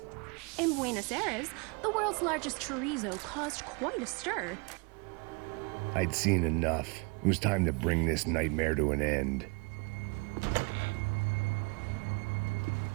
In Buenos Aires, the world's largest chorizo caused quite a stir. I'd seen enough. It was time to bring this nightmare to an end.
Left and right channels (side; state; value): left; quieter; 30.5 dB